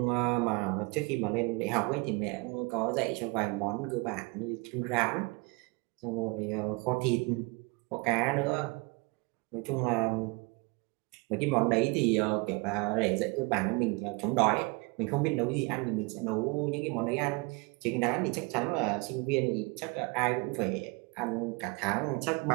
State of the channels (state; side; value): quieter; left; 28.3 dB